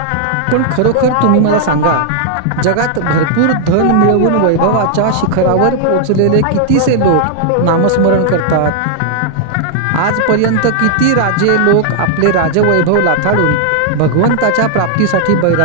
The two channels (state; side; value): different; both; correlation 0.00